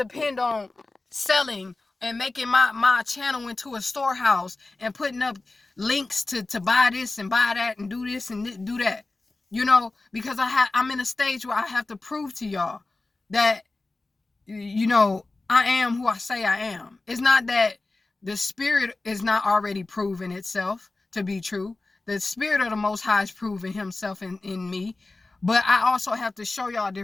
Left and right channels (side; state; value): right; quieter; 3.3 dB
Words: on selling and making my channel into a storehouse and putting up links to buy this and buy that and do this and do that, because I'm in a stage where I have to prove to y'all that, I am who I say I am. It's not that the spirit is not already proven itself to be true. The spirit of the Most High is proving himself in me. But I also have to show y'all